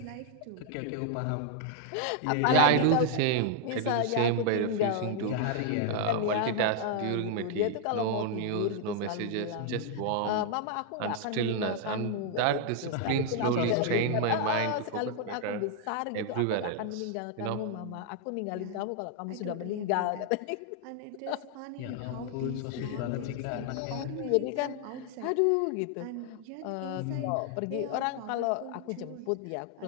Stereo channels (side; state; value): both; different; correlation 0.00